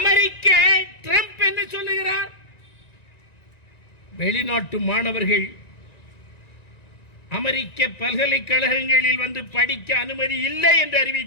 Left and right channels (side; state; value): right; late; 1.9 ms